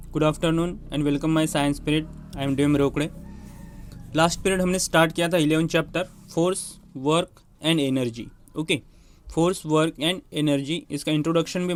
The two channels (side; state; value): both; identical; correlation 1.00